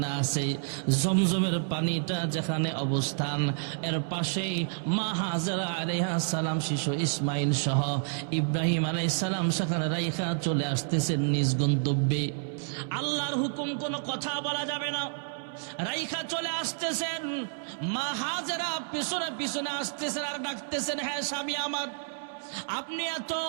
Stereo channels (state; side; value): silent; left; 58 dB below the other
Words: আছে, জমজমের পানিটা যেখানে অবস্থান, এর পাশেই মা হাজরা আলাইহিস সালাম শিশু ইসমাইল সহ ইব্রাহিম আলাইহিস সালাম সেখানে রাইখা চলে আসতেছেন নিজ গন্তব্যে। আল্লাহর হুকুম কোনো কথা বলা যাবে না, রাইখা চলে আসতেছেন। মা হাজরা পিছনে পিছনে আসতেছেন আর ডাকতেছেন, হ্যাঁ স্বামী আমার, আপনি এত